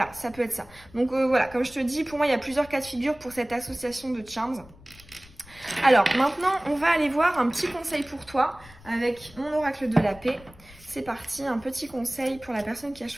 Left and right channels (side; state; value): left; noise; rumble, 23 dB below the sound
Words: ça peut être ça. Donc voilà, comme je te dis, pour moi, il y a plusieurs cas de figure pour cette association de charms. Alors maintenant on va aller voir un petit conseil pour toi avec mon oracle de la paix. C'est parti, un petit conseil pour la personne qui a